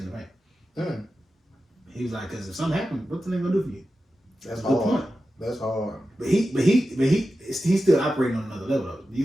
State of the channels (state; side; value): normal; both; correlation 0.92